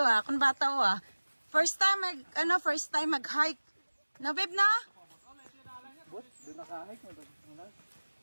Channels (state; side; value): inverted; both; correlation -1.00